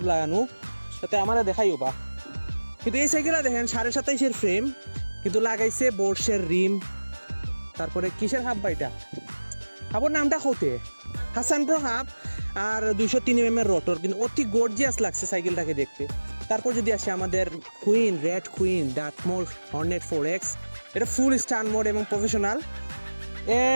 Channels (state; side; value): inverted; both; correlation -1.00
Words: লাগানো, সাথে আমরা দেখাইও বা। কিন্তু এই সাইকেলটা দেখেন 27.5-এর ফ্রেম, কিন্তু লাগাইছে বোর্সের রিম। তারপরে কিসের হাফ বাইটা হাবর নামটা হতে হাসান প্রো হাফ আর 203 mm রোটর, কিন্তু অতি গর্জিয়াস লাগছে সাইকেলটাকে দেখতে। তারপর যদি আসে আমাদের queen red queen Dartmoor Hornet 4X, এটা ফুল স্টান মোড এবং প্রফেশনাল।